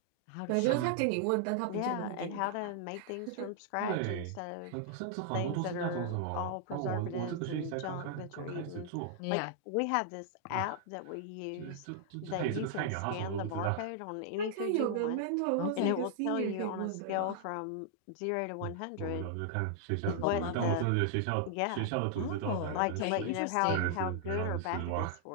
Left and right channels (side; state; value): both; different; correlation -0.01